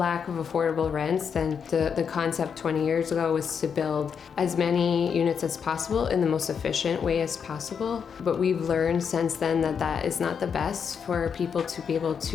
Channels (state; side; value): quieter; right; 6.8 dB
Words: of affordable rents, then the concept 20 years ago was to build as many units as possible in the most efficient way as possible. But we've learned since then that that is not the best for people to be able